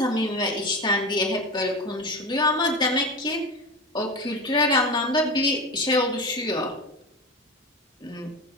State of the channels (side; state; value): both; normal; correlation 0.24